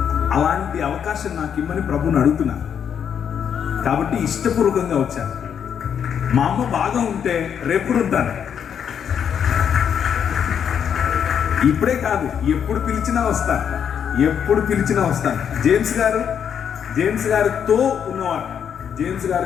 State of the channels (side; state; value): right; quieter; 8.1 dB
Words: అలాంటి అవకాశం నాకు ఇమ్మని ప్రభుని అడుగుతున్నాను. కాబట్టి ఇష్టపూర్వకంగా వచ్చాను. మా అమ్మ బాగా ఉంటే రేపుడు ఉంటాను. ఇప్పుడే కాదు, ఎప్పుడు పిలిచినా వస్తాను. జేమ్స్ గారితో ఉన్నవాడు, జేమ్స్